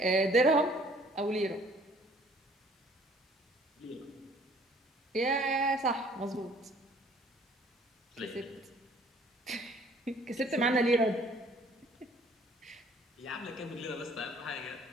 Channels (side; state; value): both; normal; correlation 0.57